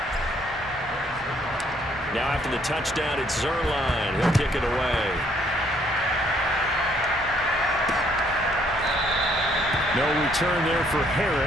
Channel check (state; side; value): normal; both; correlation 0.66